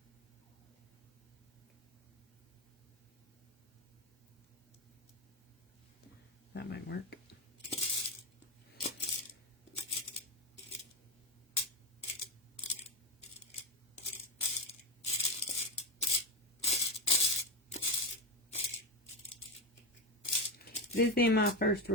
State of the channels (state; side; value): normal; both; correlation 0.14